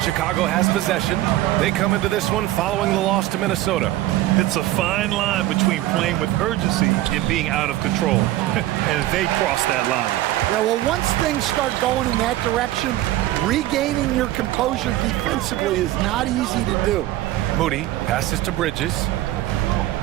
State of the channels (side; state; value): left; quieter; 15.5 dB